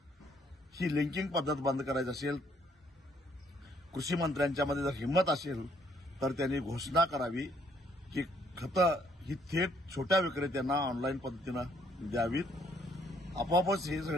ही लिंकिंग पद्धत बंद करायची असेल, कृषी मंत्र्यांच्यामध्ये जर हिंमत असेल तर त्यांनी घोषणा करावी की खतं ही थेट छोट्या विक्रेत्यांना ऑनलाईन पद्धतीनं द्यावीत. आपोआपच हे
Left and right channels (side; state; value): both; normal; correlation 0.67